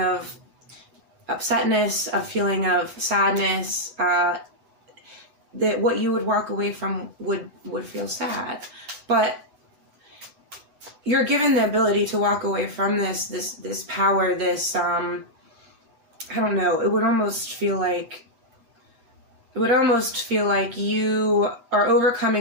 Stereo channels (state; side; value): late; left; 8.1 ms